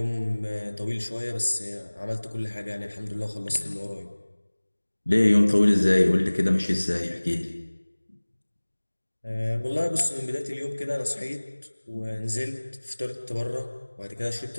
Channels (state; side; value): inverted; both; correlation -1.00